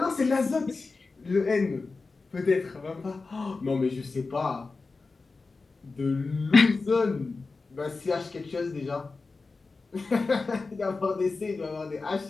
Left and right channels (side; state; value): right; quieter; 4.0 dB